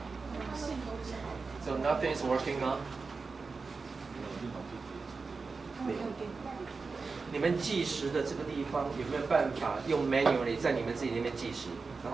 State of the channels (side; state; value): left; quieter; 4.4 dB